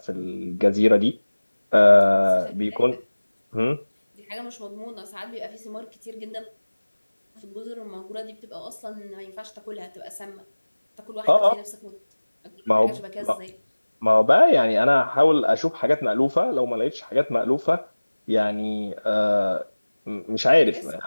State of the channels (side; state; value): both; inverted; correlation -1.00